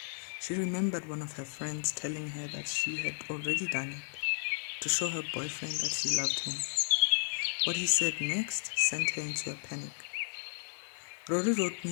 She remembered one of her friends telling her that she had already done it, to show her boyfriend that she loved him. What he said next sent her into a panic. Rory wrote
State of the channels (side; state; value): right; silent; digital silence